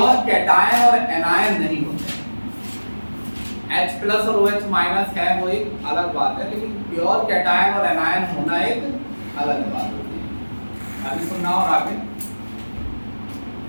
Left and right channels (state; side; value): inverted; both; correlation -1.00